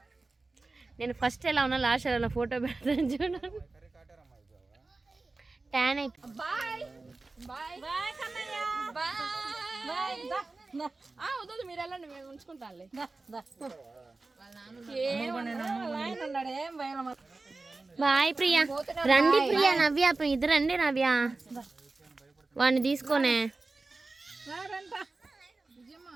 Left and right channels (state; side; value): quieter; left; 3.5 dB